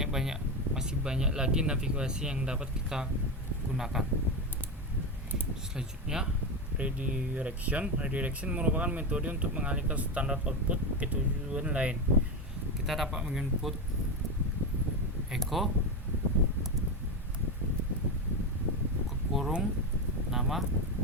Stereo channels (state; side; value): normal; both; correlation 0.15